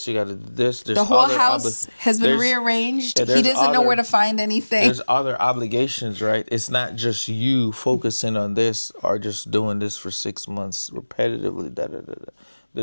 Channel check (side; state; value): both; inverted; correlation -1.00